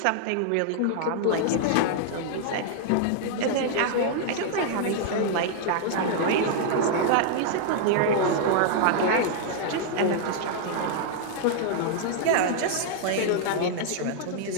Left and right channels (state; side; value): different; both; correlation -0.01